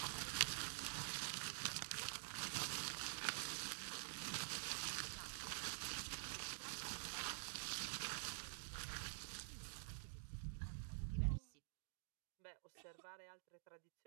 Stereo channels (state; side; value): silent; left; digital silence